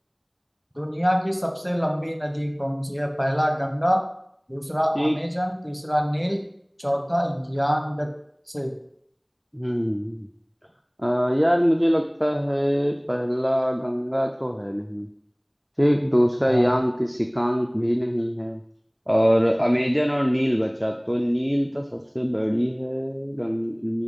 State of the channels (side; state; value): both; identical; correlation 1.00